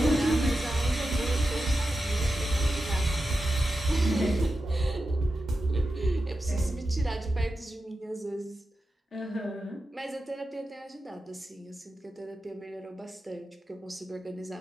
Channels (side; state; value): both; normal; correlation 0.90